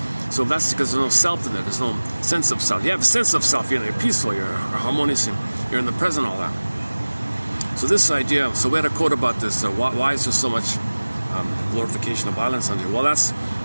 So that's because there's no self in there. There's no sense of self. You have a sense of self. You're peaceful. You're harmonious. You're in the present. All that. So this idea. So we had a quote about this. Why is there so much glorification of violence on here? Well, that's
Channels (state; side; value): inverted; both; correlation -1.00